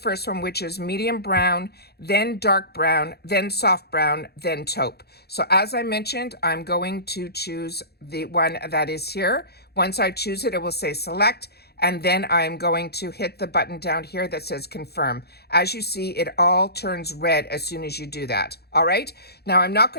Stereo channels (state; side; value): late; right; 0.47 ms